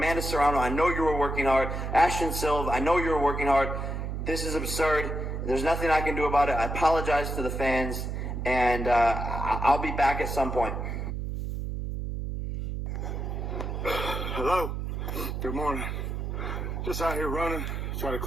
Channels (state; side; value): noise; right; hum, 4 dB below the sound